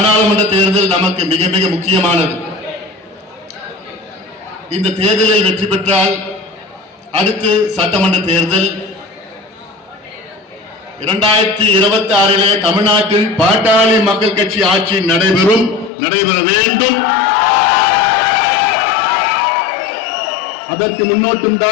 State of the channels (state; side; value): drops out; right; at 15.9 s